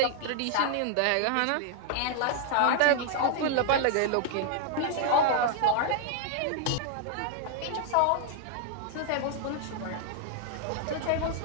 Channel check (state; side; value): different; both; correlation 0.00